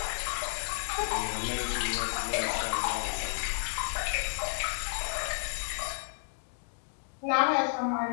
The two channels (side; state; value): right; silent; 57 dB below the other